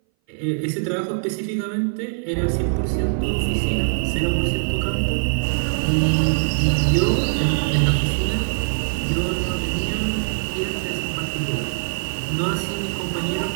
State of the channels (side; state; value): left; silent; 59 dB below the other